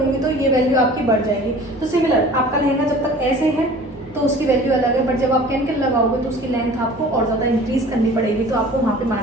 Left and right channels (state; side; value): normal; both; correlation 0.45